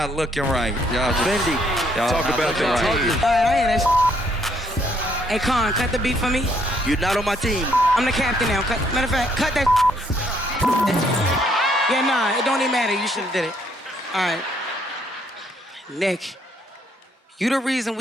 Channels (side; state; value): both; normal; correlation 0.68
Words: looking right. Y'all just... Y'all Talk not about looking that. right. All right, I hear that. Hey, Con, cut the beat for me. You're not on my team. I'm the captain now. Matter of fact, cut that. Yeah, nah, it don't even matter. You should have did it. All right. Nick, you the reason